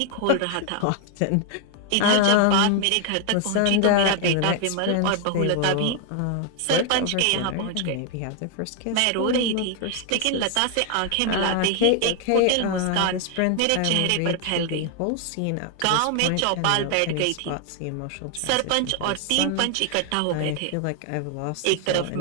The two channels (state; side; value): different; both; correlation 0.00